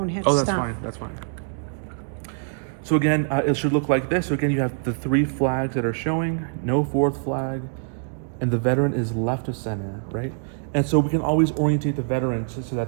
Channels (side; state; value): left; silent; digital silence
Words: hit Oh, that's stop. fine. That's fine. So again, it should look like this. So again, you have the 3 flags that are showing, no 4th flag, and the veteran is left of center, right? And so we can always orientate the veterans so that